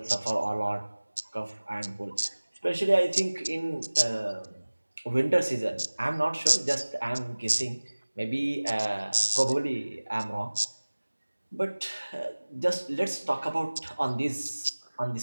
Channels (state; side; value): inverted; both; correlation -1.00